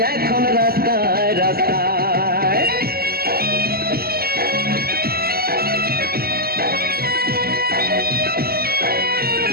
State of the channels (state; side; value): late; left; 0.45 ms